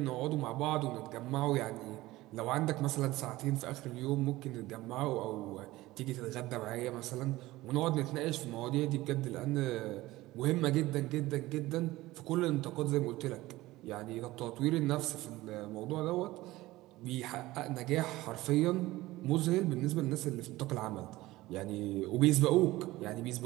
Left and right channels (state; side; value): quieter; left; 18.1 dB